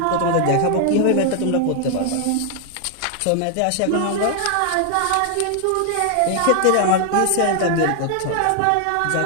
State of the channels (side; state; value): both; different; correlation 0.00